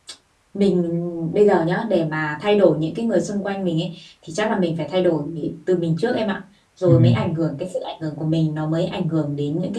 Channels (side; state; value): both; identical; correlation 1.00